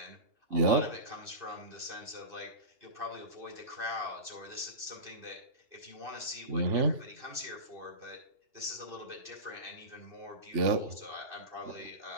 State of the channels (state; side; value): late; left; 2.8 ms